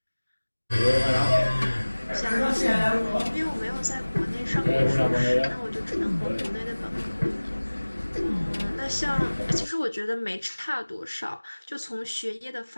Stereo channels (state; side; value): inverted; both; correlation -1.00